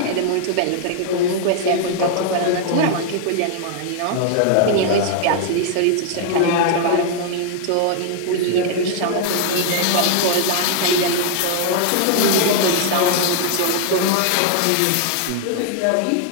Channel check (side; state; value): both; different; correlation -0.01